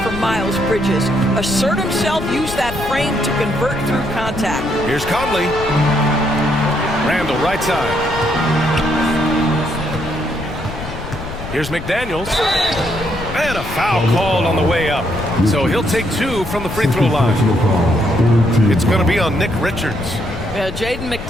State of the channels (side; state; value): left; noise; rumble, 10 dB below the sound